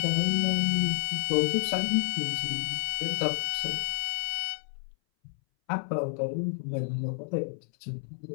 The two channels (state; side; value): silent; right; 58 dB below the other